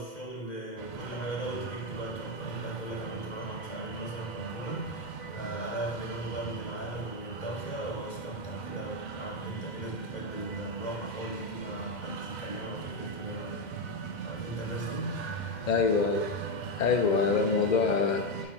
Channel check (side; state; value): right; late; 2.1 ms